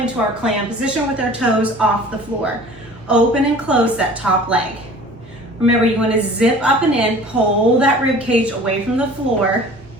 our clam position with our toes off the floor. Open and close that top leg. Remember, you wanna zip up and in, pull that rib cage away from the floor.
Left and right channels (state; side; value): normal; both; correlation 0.45